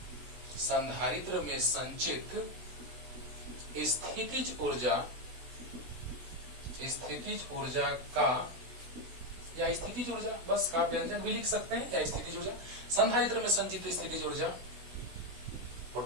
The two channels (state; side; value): late; left; 16 ms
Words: स्थितिज ऊर्जा का, या स्थितिज ऊर्जा बस का व्यंजक भी लिख सकते हैं, या स्थितिज ऊर्जा, संधारित्र में संचित स्थितिज ऊर्जा